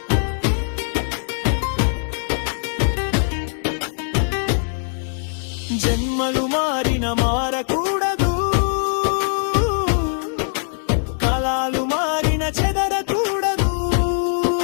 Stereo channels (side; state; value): right; silent; digital silence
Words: జన్మలు మారిన మారకూడదు కాలాలు మారిన చెదరకూడదు